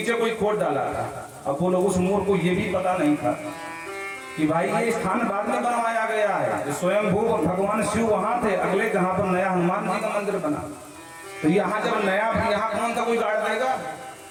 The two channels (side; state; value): both; identical; correlation 1.00